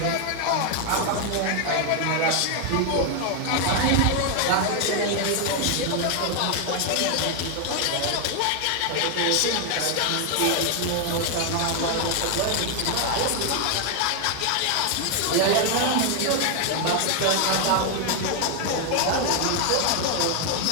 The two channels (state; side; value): different; both; correlation 0.00